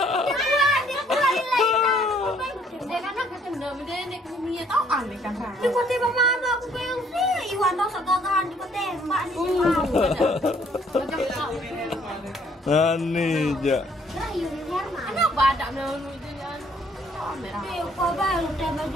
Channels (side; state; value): both; normal; correlation 0.63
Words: Dia pulang nilai. Dia kan nak ketemu dia nek kumia tau aneh kan. Di kota tembak mama aku pengen sih. Iwan tau segagahan di kota tembak nih. Macam tak. Nani ja. Rayu di Herman. Kenapa ada melalui dia? Dia kau baru tembak